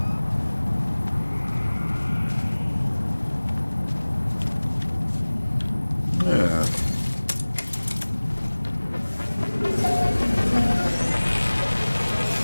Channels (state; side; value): inverted; both; correlation -1.00